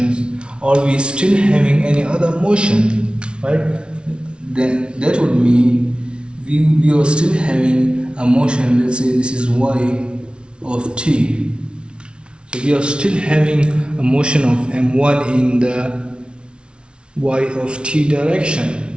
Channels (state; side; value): late; left; 0.057 ms